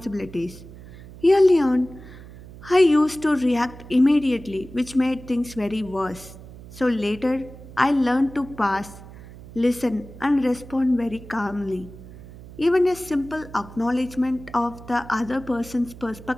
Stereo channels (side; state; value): right; noise; hum, 17 dB below the sound